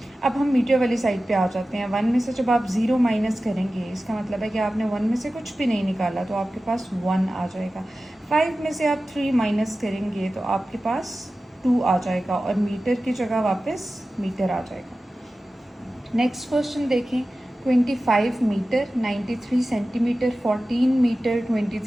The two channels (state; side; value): normal; both; correlation 0.95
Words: अब हम मीटर वाली साइड पे आ जाते हैं। 1 में से जब आप 0 माइनस करेंगे, इसका मतलब है कि आपने 1 में से कुछ भी नहीं निकाला, तो आपके पास 1 आ जाएगा। 5 में से आप 3 माइनस करेंगे तो आपके पास 2 आ जाएगा और मीटर की जगह वापस मीटर आ जाएगा। नेक्स्ट क्वेश्चन देखें। 25 मीटर, 93 सेंटीमीटर, 14 मीटर,